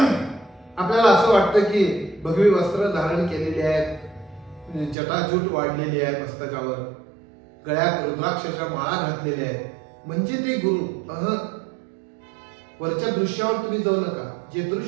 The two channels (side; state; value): left; drops out; at 5.0 s